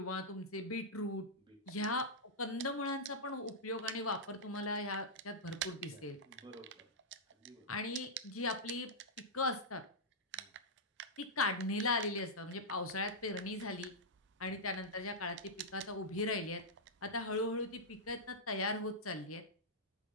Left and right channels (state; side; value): normal; both; correlation -0.10